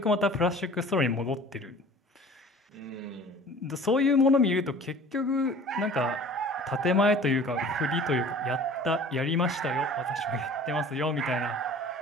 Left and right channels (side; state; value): both; normal; correlation 0.45